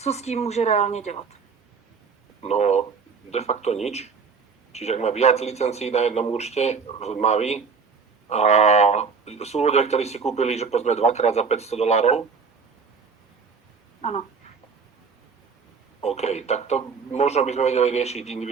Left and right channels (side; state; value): left; quieter; 5.3 dB